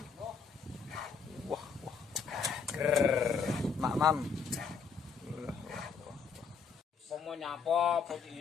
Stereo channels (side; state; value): right; quieter; 5.8 dB